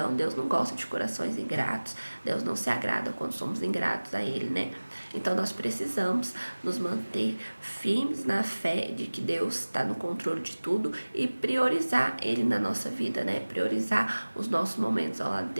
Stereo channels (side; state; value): both; inverted; correlation -1.00